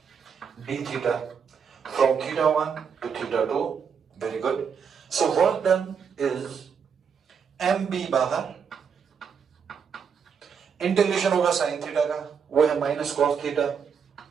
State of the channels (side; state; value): left; quieter; 6.8 dB